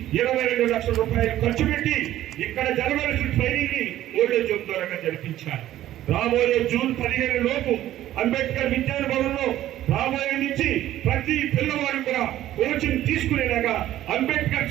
22 లక్షల రూపాయలు ఖర్చు పెట్టి ఇక్కడ జరగవలసిన ట్రైనింగ్ ని ఓల్డేజ్ హోమ్ ద్వారా జరిపించారు. రాబోయే జూన్ 15 లోపు అంబేద్కర్ విజ్ఞాన భవన్ లో రాబోయే నుంచి ప్రతి పిల్లవాడు కూడా కోచింగ్ తీసుకునేలాగా అంబేద్కర్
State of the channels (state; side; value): quieter; left; 13.4 dB